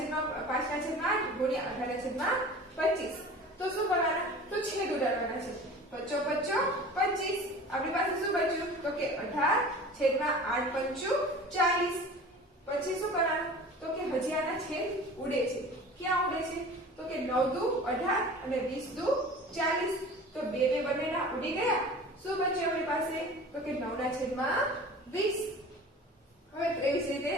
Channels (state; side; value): normal; both; correlation 0.40